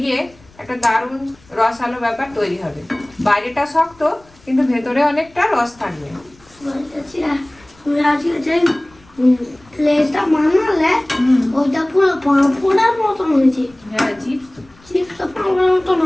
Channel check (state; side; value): noise; left; rumble, 28 dB below the sound